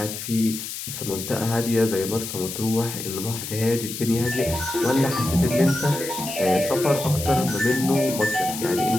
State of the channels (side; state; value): left; noise; hiss, 7 dB below the sound